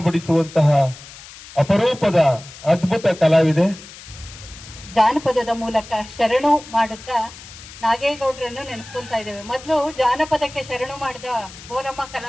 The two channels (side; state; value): left; noise; hiss, 17 dB below the sound